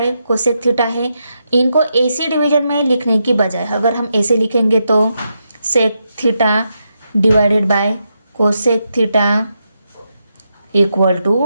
cosec theta है. इनको ऐसे डिवीजन में लिखने की बजाय अगर हम ऐसे लिखेंगे तो sec theta divided by cosec theta equal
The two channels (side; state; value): both; inverted; correlation -0.84